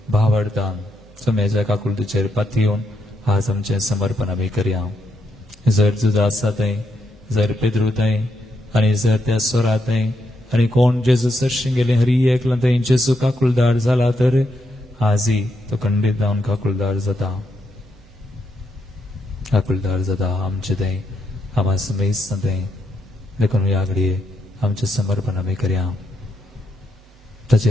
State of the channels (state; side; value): normal; both; correlation 0.80